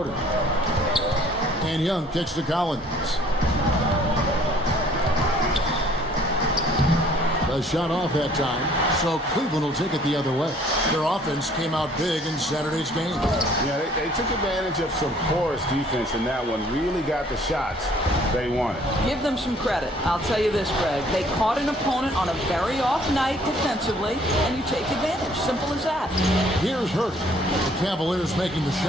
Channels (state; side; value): normal; both; correlation 0.58